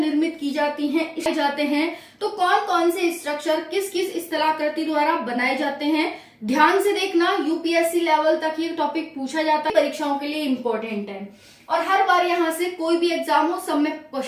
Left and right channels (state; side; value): identical; both; correlation 1.00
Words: की जाती हैं, तो कौन कौन से स्ट्रक्चर किस किस स्थलाकृति द्वारा बनाए जाते हैं, ध्यान से देखना। यूपीएससी लेवल तक ये टॉपिक पूछा जाता है, परीक्षाओं के लिए इम्पोर्टेंट है और हर बार यहाँ से कोई भी एग्जाम हो सब में